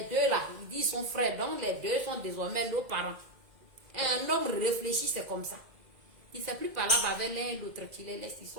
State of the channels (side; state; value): left; late; 2.0 ms